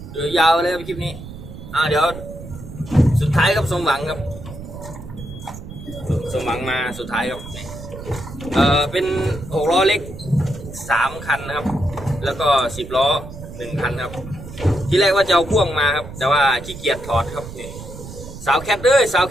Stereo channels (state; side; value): noise; right; rumble, 13 dB below the sound